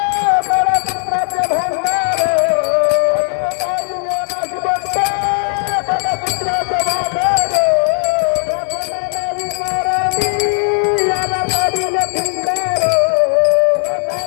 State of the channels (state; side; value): silent; right; 63 dB below the other